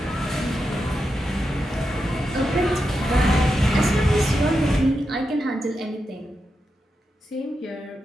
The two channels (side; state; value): both; normal; correlation 0.87